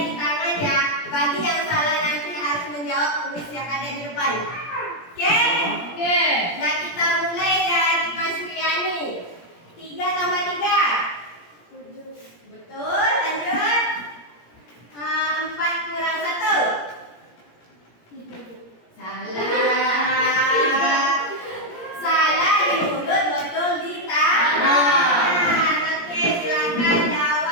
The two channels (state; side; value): late; right; 17 ms